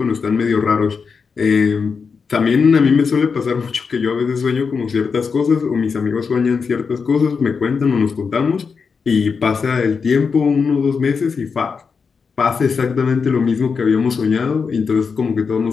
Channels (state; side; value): quieter; right; 5.5 dB